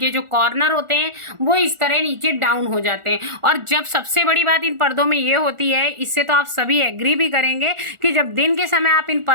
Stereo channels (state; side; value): late; left; 1.4 ms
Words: जो कॉर्नर होते हैं वो इस तरह नीचे डाउन हो जाते हैं। और जब सबसे बड़ी बात इन पर्दों में ये होती है, इससे तो आप सभी एग्री भी करेंगे कि जब दिन के समय आप इन